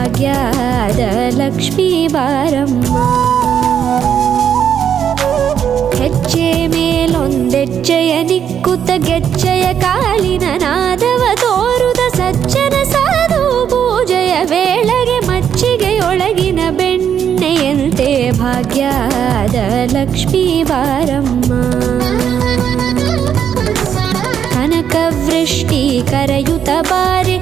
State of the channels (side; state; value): left; quieter; 8.6 dB